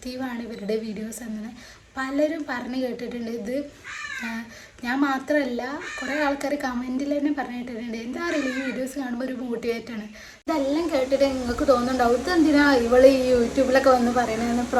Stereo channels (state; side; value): identical; both; correlation 1.00